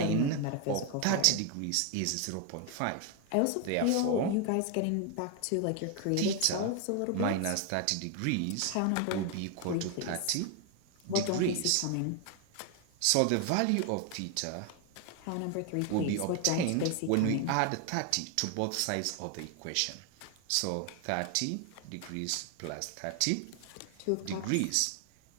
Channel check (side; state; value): both; different; correlation 0.01